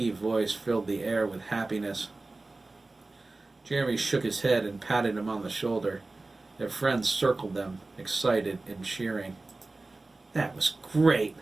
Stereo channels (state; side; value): quieter; left; 3.2 dB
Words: voice filled the air with happiness. Jeremy shook his head and patted him on the shoulder. Their friends circled them, excited and cheering. "That was great,"